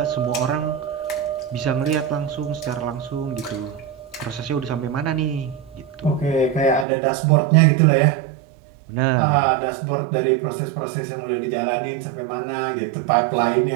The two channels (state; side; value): drops out; left; at 6.9 s